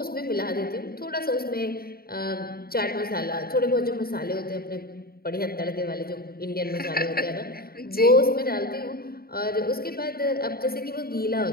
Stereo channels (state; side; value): late; right; 0.44 ms